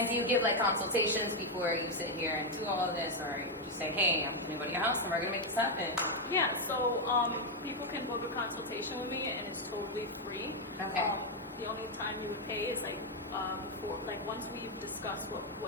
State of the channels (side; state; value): both; normal; correlation 0.02